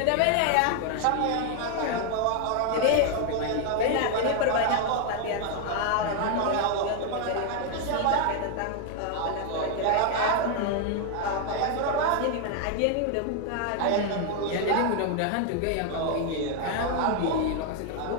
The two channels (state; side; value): different; both; correlation 0.00